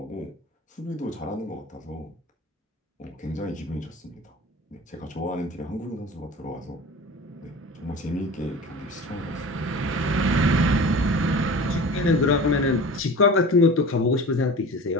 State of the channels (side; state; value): both; normal; correlation 0.37